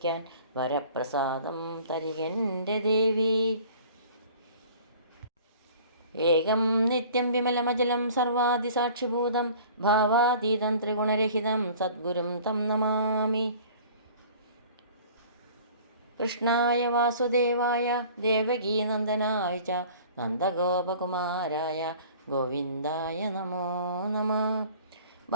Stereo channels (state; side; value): inverted; both; correlation -0.47